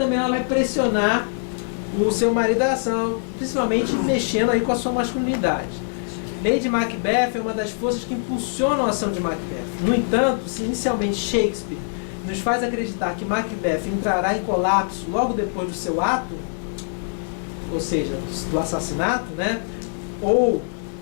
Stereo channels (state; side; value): silent; right; digital silence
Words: ela vai pressionar o seu marido à ação, principalmente mexendo aí com a sua masculinidade. Lady Macbeth é uma das forças que impulsionam a ação de Macbeth. No entanto, se inicialmente Shakespeare nos faz acreditar que Macbeth entrará em colapso logo depois do seu ato, ou seja, do assassinato, né? Ou